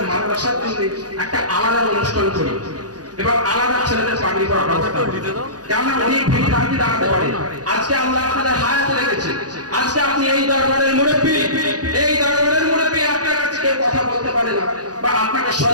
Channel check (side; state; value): left; late; 0.68 ms